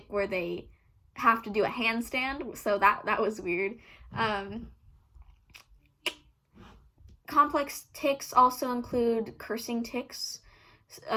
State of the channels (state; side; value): identical; both; correlation 1.00